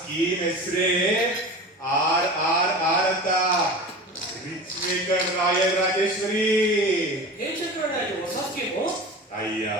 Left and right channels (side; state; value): both; normal; correlation 0.33